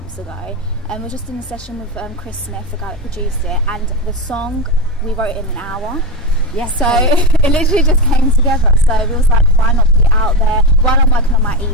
ago. We were just in a session with Chris Smith, the guy that produced it, and the song, we wrote it in an hour. Yes. So it literally just came together. So we was like, why not put it out there while I'm working on my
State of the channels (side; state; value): both; normal; correlation 0.15